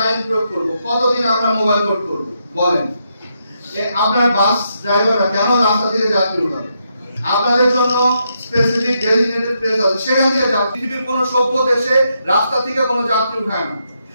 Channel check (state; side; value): inverted; both; correlation -0.80